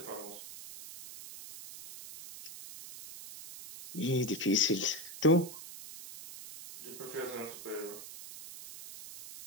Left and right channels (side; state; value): right; noise; hiss, 13 dB below the sound